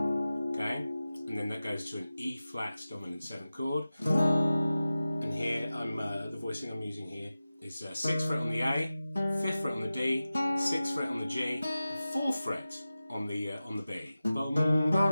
and then that goes to an E flat dominant 7 chord. And here the voicing I'm using here is 6th fret on the A, 5th fret on the D, 6th fret on the G, and 4th fret on the B. Bum,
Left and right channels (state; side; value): inverted; both; correlation -0.95